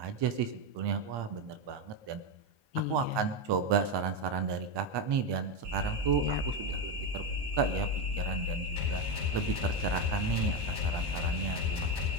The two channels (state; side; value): late; left; 1.2 ms